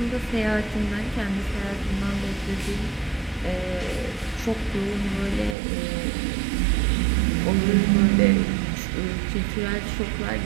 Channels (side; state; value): left; drops out; at 5.6 s